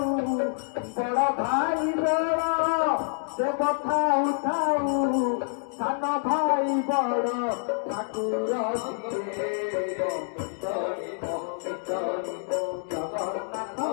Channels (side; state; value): right; silent; digital silence